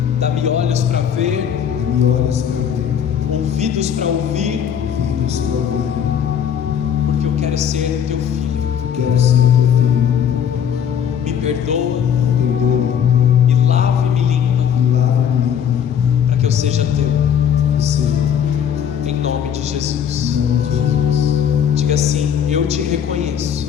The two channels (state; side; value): quieter; right; 8.5 dB